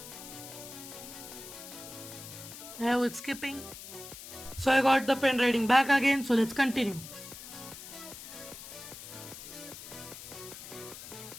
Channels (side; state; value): left; noise; hiss, 12 dB below the sound